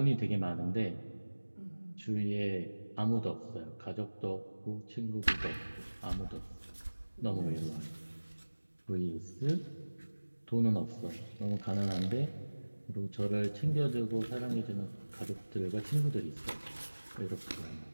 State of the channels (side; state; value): both; inverted; correlation -1.00